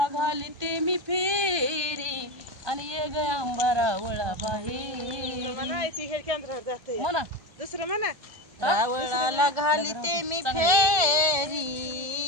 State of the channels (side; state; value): left; late; 1.5 ms